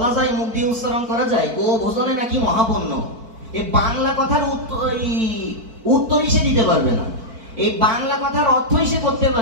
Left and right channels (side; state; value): left; late; 4.5 ms